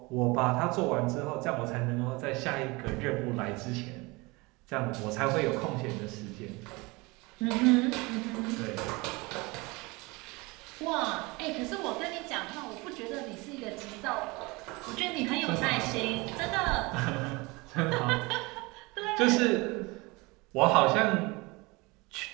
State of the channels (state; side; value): quieter; left; 24.7 dB